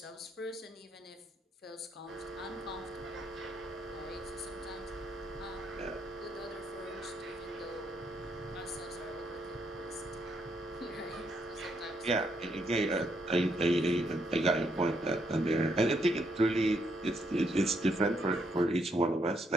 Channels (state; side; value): normal; both; correlation 0.75